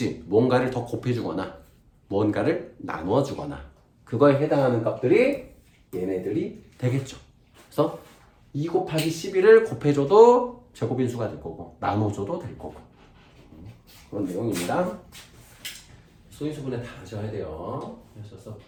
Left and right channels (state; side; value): identical; both; correlation 1.00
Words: 뭔가를 더 곱해주거나 뭔가를 나누어주거나 그거에 해당하는 값들이 얘네들이 되겠죠. 그래서 2 곱하기 11을 곱해줘도 제곱인 수가 될 거고 나눠줘도 될 거고 그런 내용입니다. 소인수분해 다 하셔야 돼요. 하셔서